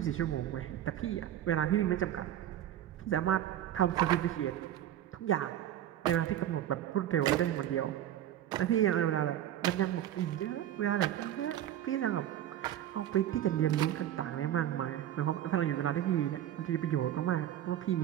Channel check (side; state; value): left; quieter; 11.6 dB